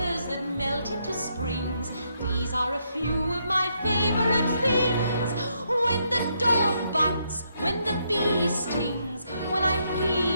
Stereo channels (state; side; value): inverted; both; correlation -0.76